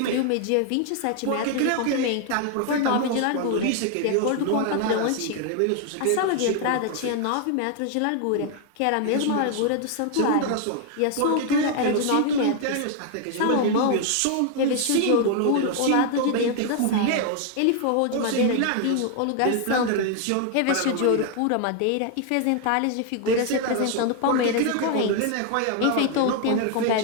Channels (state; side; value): different; both; correlation 0.00